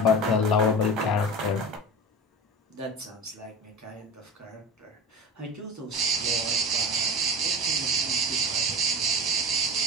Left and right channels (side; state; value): both; normal; correlation 0.32